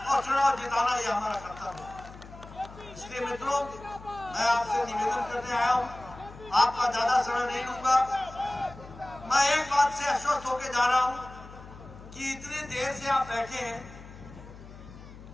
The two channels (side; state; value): left; noise; hum, 17 dB below the sound